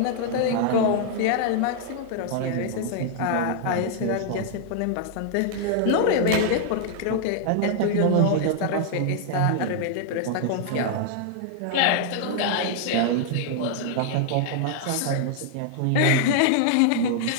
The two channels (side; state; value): both; different; correlation -0.01